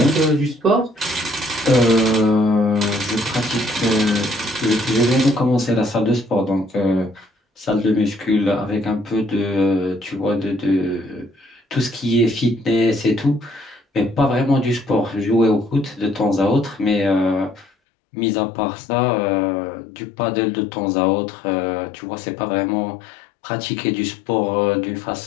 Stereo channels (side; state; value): right; drops out; at 17.7 s